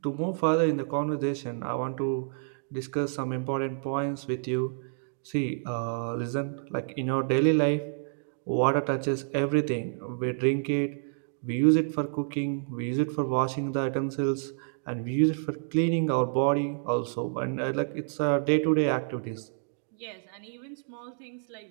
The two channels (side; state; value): left; silent; digital silence